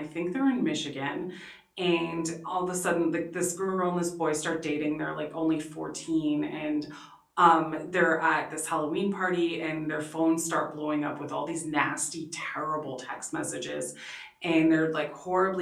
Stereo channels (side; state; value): both; identical; correlation 1.00